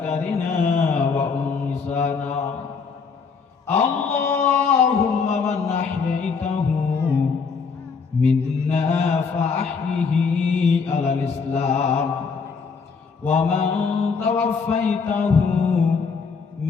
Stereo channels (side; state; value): right; quieter; 5.3 dB